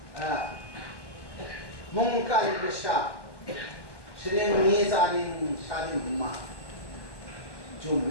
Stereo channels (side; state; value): right; late; 1.1 ms